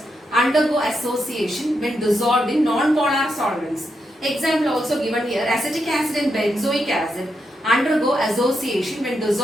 undergo association when dissolved in non-polar solvents. Example also given here, acetic acid and benzoic acid undergo association when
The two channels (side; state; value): both; normal; correlation 0.83